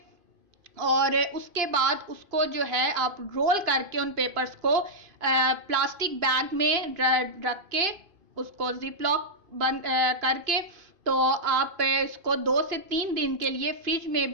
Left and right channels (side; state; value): left; late; 2.5 ms